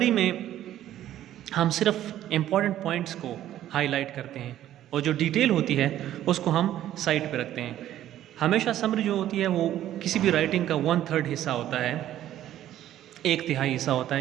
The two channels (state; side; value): quieter; left; 12.4 dB